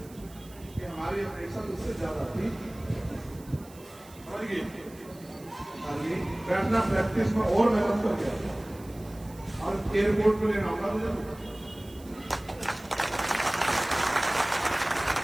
कि हमारी अपेक्षा उससे ज्यादा थी। बैठना प्रैक्टिस में और मेहनत कर गया और एयरपोर्ट में लेना होगा मुझे।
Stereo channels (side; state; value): right; noise; hiss, 23 dB below the sound